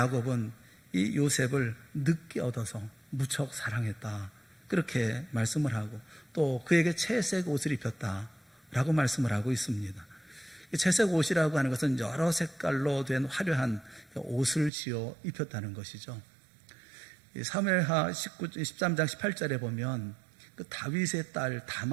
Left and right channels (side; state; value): left; drops out; at 14.7 s